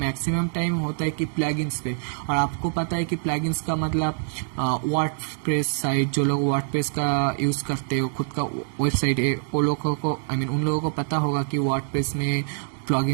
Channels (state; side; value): silent; left; digital silence